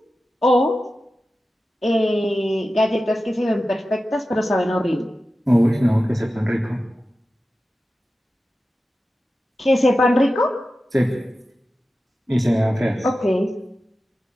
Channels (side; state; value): both; normal; correlation 0.93